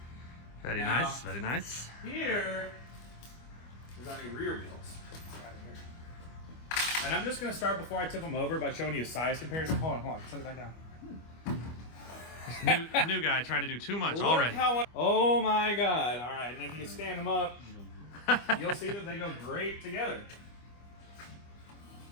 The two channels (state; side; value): late; right; 25 ms